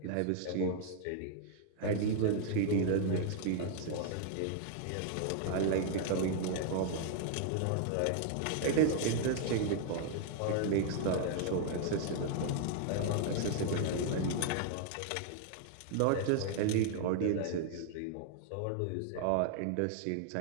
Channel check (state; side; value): different; both; correlation 0.00